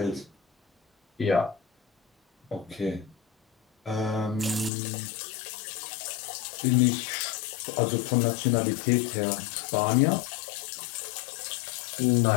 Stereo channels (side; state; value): right; drops out; at 4.7 s